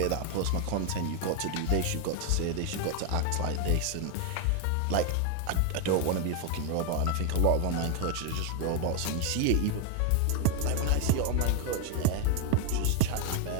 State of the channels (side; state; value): both; different; correlation 0.01